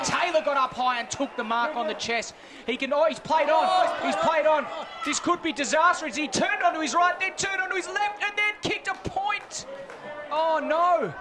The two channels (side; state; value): both; identical; correlation 1.00